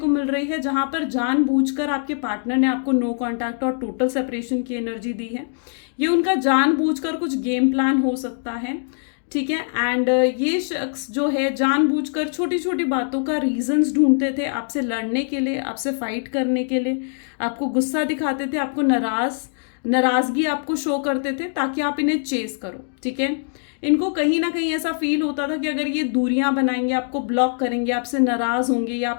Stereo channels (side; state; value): right; silent; digital silence